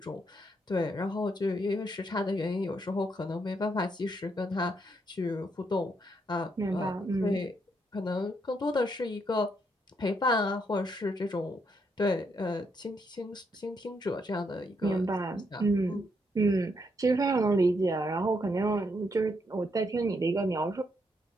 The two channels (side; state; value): both; normal; correlation 0.76